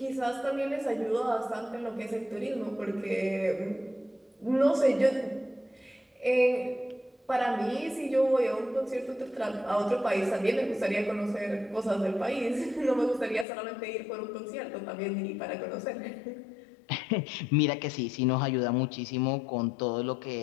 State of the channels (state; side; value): drops out; right; at 13.5 s